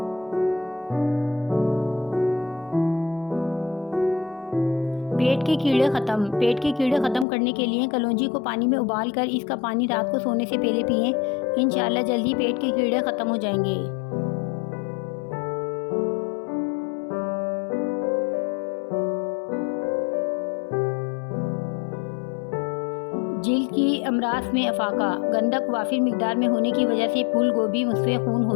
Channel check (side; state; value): right; drops out; at 7.2 s